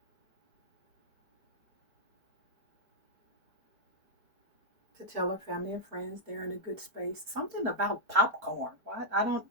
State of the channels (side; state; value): left; late; 4.4 ms